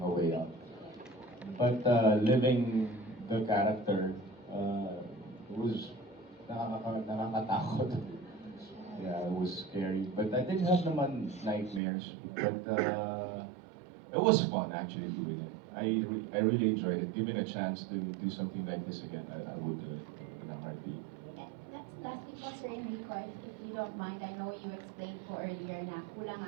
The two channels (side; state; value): left; drops out; at 11.8 s